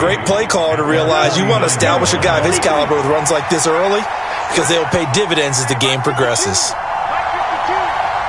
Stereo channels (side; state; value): both; identical; correlation 1.00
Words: play caller to realize you want to establish a guy of his caliber with runs like this early because they'll pay dividends as the game progresses.